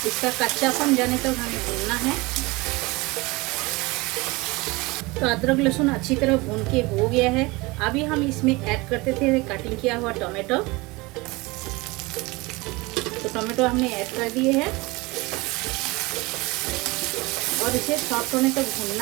इसका कच्चापन जाने तक हमें भूनना है। तो अदरक लहसुन अच्छी तरह भून के हो गया है। अभी हम इसमें ऐड करते थे कटिंग किया हुआ टोमेटो। तो टोमेटो हमने ऐड कर दिए हैं और इसे सॉफ्ट होने तक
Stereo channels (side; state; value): left; quieter; 23.6 dB